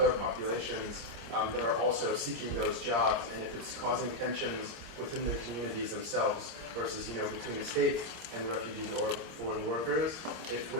populations that are also seeking those jobs, and if it's causing tensions within the communities themselves versus, between the state and the refugees or foreign workers, if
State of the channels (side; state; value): left; late; 26 ms